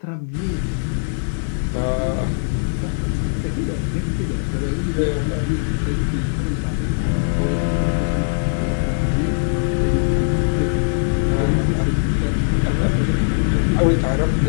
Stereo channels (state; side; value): silent; right; digital silence